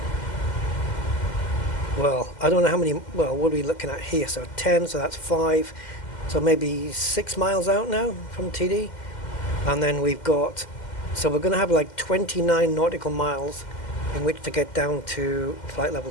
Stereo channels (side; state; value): right; late; 2.1 ms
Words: well, I don't know how many, well, what are we looking at here? So 10, so that's 5, so maybe 6 miles out now from TD. And then we've got, so we're going to have like 29 nautical miles in which to get down to flight level